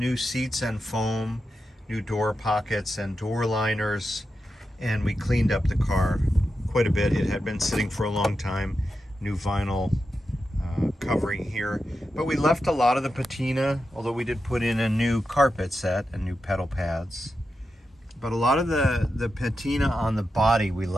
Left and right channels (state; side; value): normal; both; correlation 0.89